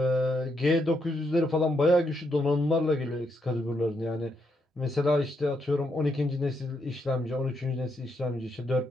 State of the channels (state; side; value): normal; both; correlation 0.78